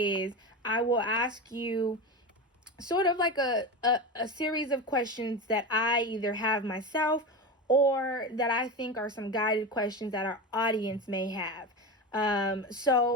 I will ask you sort of like a series of questions that I either have myself or that I think are some guided questions that our audience may have.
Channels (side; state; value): both; normal; correlation 0.22